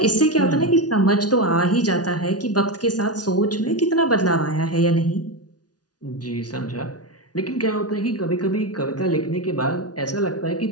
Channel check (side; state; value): right; late; 0.69 ms